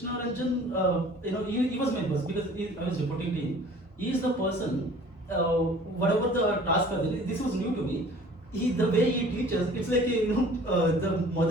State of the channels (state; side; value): normal; both; correlation 0.49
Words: Ranjan, he was my boss, because I was reporting to him. He is the person. Whatever the task are there, this was new to me. The way he teaches, it's like the